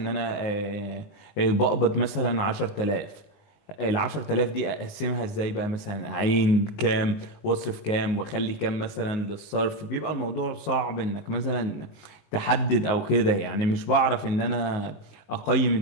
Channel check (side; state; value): right; late; 19 ms